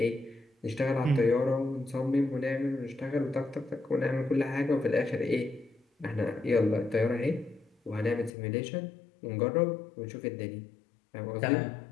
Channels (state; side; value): drops out; right; at 8.3 s